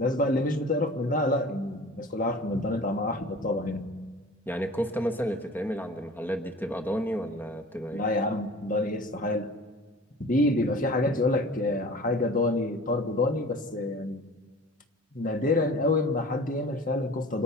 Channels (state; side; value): normal; both; correlation 0.42